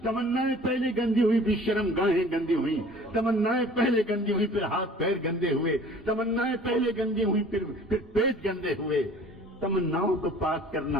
تمنائیں پہلے گندی ہوئی پھر شرم گاہیں گندی ہوئی، تمنائیں پہلے گندی ہوئی پھر ہاتھ پیر گندے ہوئے، تمنائیں پہلے گندی ہوئی پھر پیٹ گندے ہوئے۔ تمناؤں کو پاک کرنا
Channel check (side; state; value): both; normal; correlation 0.48